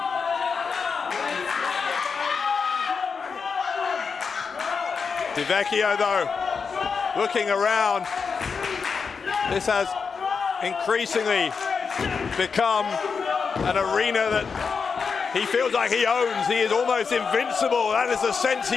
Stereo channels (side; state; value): right; quieter; 5.5 dB